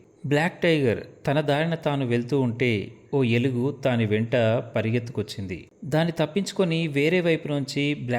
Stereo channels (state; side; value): identical; both; correlation 1.00